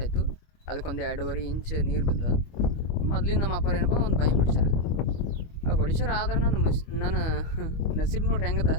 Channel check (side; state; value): right; late; 25 ms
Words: ಆಯಿತು. ಅದಕ್ಕೊಂದು 2.5 ಇಂಚ್ ನೀರು ಬಂದ. ಮೊದ್ಲಿನ ನಮ್ಮ ಅಪ್ಪ ಏನಪ್ಪ ಒಂದು ಬಾಯಿ ಹೊಡಿಸ್ಯಾರ. ಆ ಹೊಡಿಸ್ಯಾರ ಆದ್ರೆ ನನ್ನ ನಸೀಬ್ ನೋಡ್ರಿ ಹೆಂಗದ,